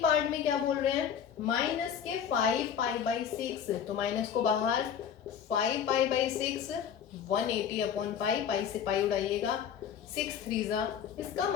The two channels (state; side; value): quieter; right; 8.2 dB